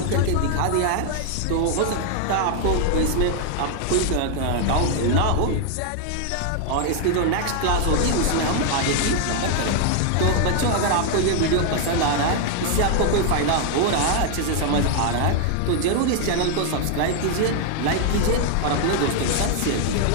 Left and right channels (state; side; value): different; both; correlation 0.00